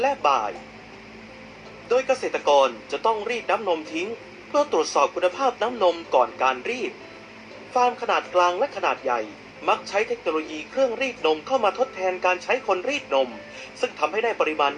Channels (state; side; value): identical; both; correlation 1.00